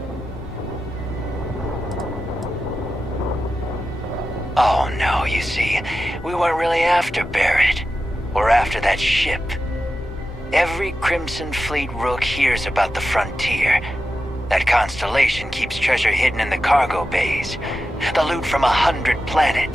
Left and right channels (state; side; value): normal; both; correlation 0.91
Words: Oh no, you see, we weren't really after Barrett. We're after that ship. Every Crimson Fleet rook hears about the Frontier. That constellation keeps treasure hidden in the cargo bays. The loot from 100